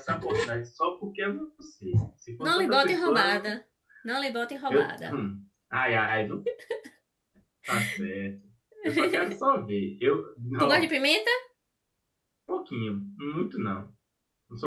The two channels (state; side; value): identical; both; correlation 1.00